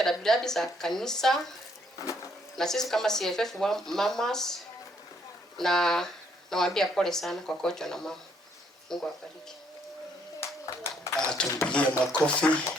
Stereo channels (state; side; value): normal; both; correlation 0.68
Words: dabidabi za kanisa, na sisi kama CFF mamas, na nawaambia pole sana kwa kocho na mama. Mungu awabariki. Tumpigie makofi.